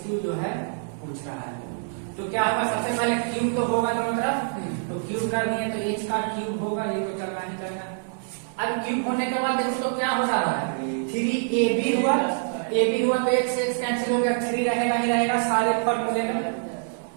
जो है पूछ रहा है। तो क्या होगा, सबसे पहले क्यूब तो होगा दोनों तरफ, तो क्यूब कर दिए तो h का क्यूब होगा, ये तो चलना ही चलना। अब क्यूब होने के बाद देखो तो क्या हो जा रहा है, 3ab हुआ, ab हुआ तो x से x कैंसिल हो गया, 3 रहेगा ही रहेगा, सारे फॉर्मूले में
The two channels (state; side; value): silent; left; digital silence